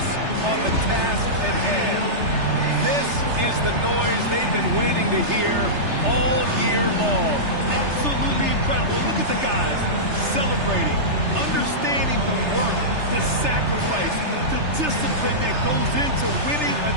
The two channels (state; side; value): late; left; 3.3 ms